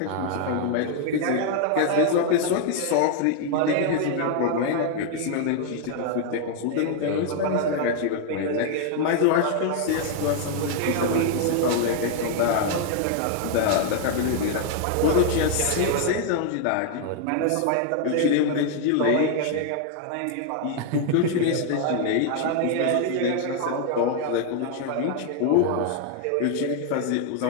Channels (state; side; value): different; both; correlation 0.00